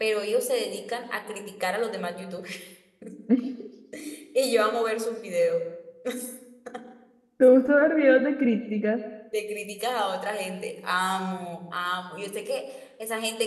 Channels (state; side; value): identical; both; correlation 1.00